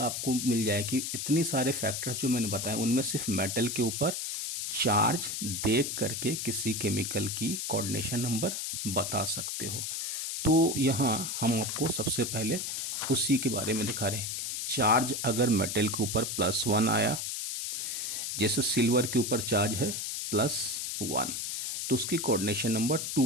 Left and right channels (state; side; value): noise; left; hiss, 3 dB below the sound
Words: आपको मिल जाएगी। इतनी सारे फैक्टर्स जो मैंने बताए उनमें सिर्फ मेटल के ऊपर चार्ज देख करके किसी केमिकल की कोऑर्डिनेशन नंबर बता सकते हो। तो यहाँ हम आपको सबसे पहले उसी के बारे में दिखा रहे हैं। चार्ज अगर मेटल के ऊपर +1 आया, जैसे सिल्वर के ऊपर चार्ज है +1, तो उसकी कोऑर्डिनेशन नंबर